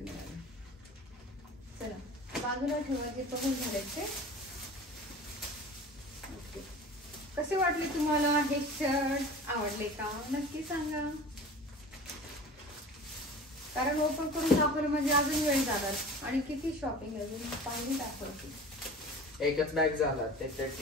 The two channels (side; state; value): both; normal; correlation 0.39